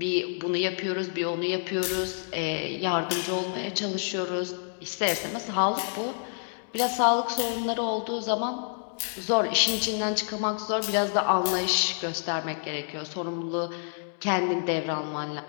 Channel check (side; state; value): right; silent; digital silence